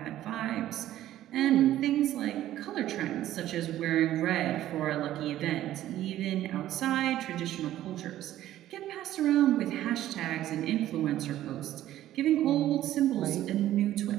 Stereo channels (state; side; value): quieter; left; 13.3 dB